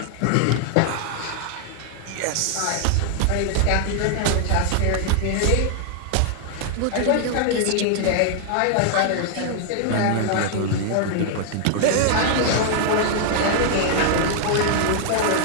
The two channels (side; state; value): both; different; correlation 0.00